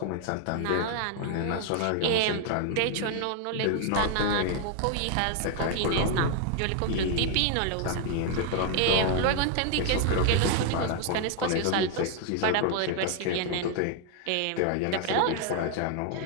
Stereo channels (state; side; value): different; both; correlation 0.00